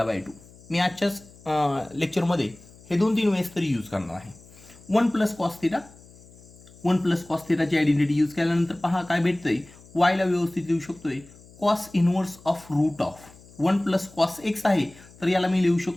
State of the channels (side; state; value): left; noise; hum, 23 dB below the sound